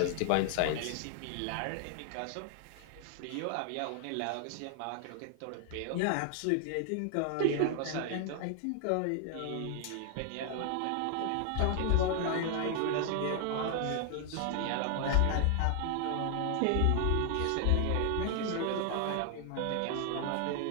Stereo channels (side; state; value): both; different; correlation 0.00